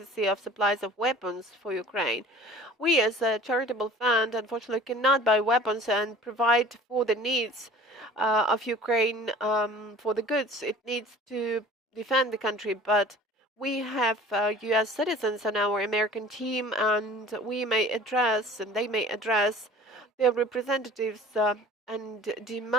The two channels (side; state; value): both; normal; correlation 0.46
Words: of supplies of weapons for Ukraine. We, as a charitable fund, unfortunately cannot buy weapons and provide for the needs of Ukraine for the goods it needs to defend the country, but we have U.S. citizens on our American team, and we may address, and they may address their representatives and